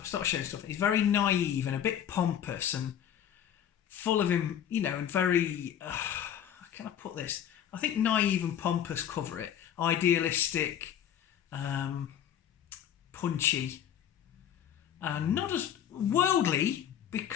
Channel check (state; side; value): quieter; right; 9.8 dB